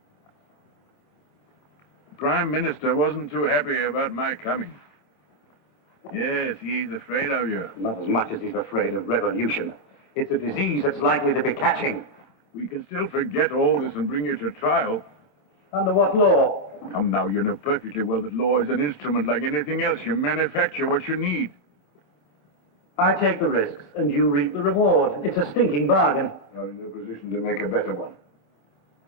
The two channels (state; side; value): late; right; 27 ms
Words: The Prime Minister wasn't too happy about my coming. Yes, he's afraid of you. Not as much as he's afraid of revolution. It's a disease that's likely to be catching. We can still forget all this and bring you to trial. Under what law? Come now, you know perfectly well that law is an instrument like anything else. You manufacture what you need. I take the risks, and you reap the reward. It's a stinking bargain. You're in no position to make a better one.